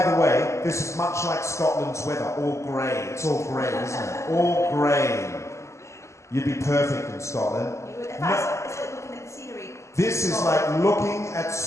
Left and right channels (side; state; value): right; late; 0.14 ms